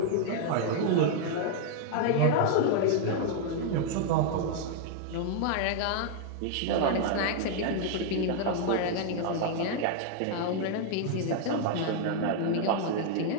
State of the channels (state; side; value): different; both; correlation -0.01